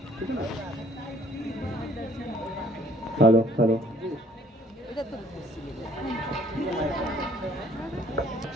ठीक है ना। हेलो हेलो,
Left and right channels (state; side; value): normal; both; correlation 0.58